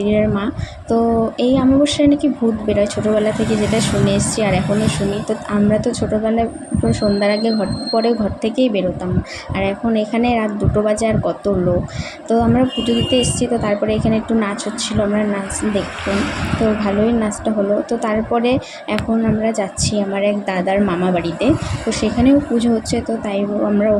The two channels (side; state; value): both; identical; correlation 1.00